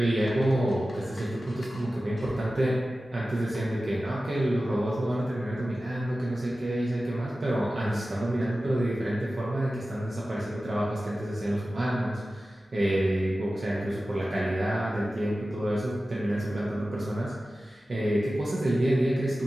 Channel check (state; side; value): normal; both; correlation 0.95